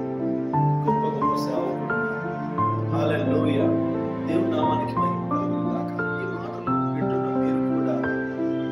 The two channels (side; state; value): both; identical; correlation 1.00